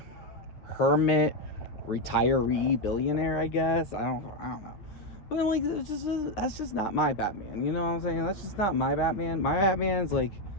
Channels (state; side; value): late; right; 9.8 ms